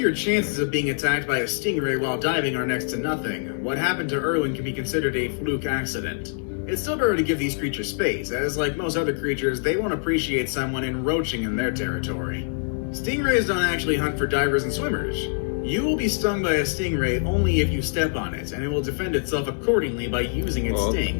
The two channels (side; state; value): right; silent; digital silence